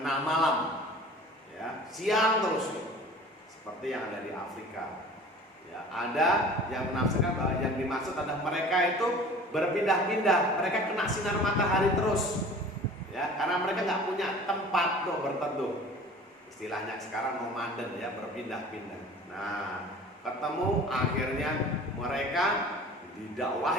malam. Ya, siang terus, seperti yang ada di Afrika. Ya, ada yang menafsirkan bahwa yang dimaksud adalah mereka itu berpindah-pindah, mereka kena sinar matahari terus, ya, karena mereka nggak punya tempat untuk berteduh. Istilahnya sekarang nomaden, ya, berpindah-pindah. Nah, ketemu akhirnya mereka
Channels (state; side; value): normal; both; correlation 0.44